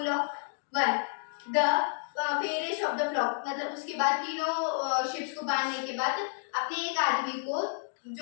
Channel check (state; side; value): silent; right; digital silence